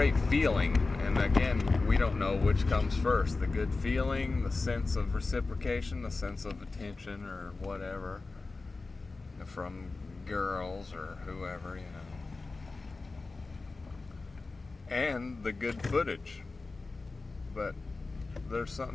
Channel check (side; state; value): right; quieter; 3.7 dB